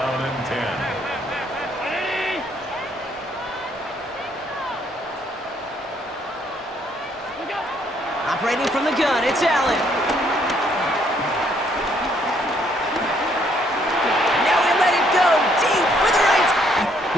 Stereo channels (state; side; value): normal; both; correlation 0.68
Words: and 10. Operating from the gun, it's Allen. Now we let it go deep for the right.